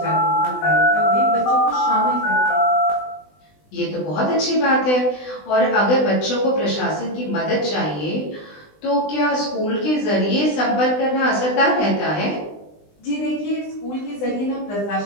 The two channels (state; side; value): late; right; 20 ms